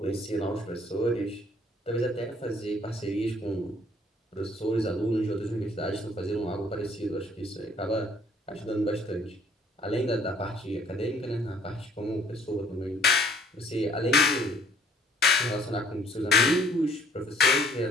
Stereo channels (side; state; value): both; normal; correlation 0.60